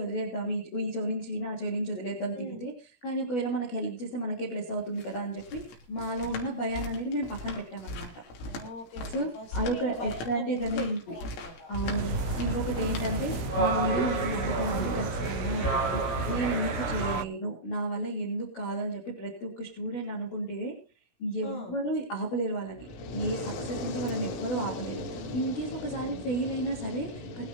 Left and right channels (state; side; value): late; right; 17 ms